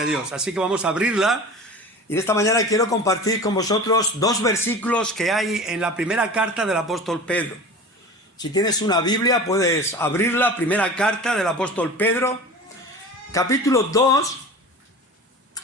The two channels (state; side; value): normal; both; correlation 0.35